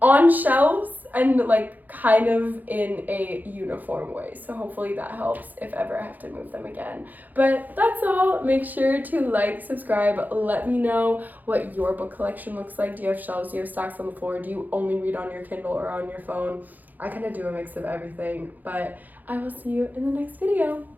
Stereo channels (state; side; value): late; left; 0.083 ms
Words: on shelves and like kind of in a uniform way, so hopefully that helps if ever I have to move them again. But that's all. Make sure to like, subscribe, let me know what your book collection looks like. Do you have shelves? Do you have stacks on the floor? Do you only read on your Kindle or on your phone? I kind of do a mix of everything, but I will see you in the next video.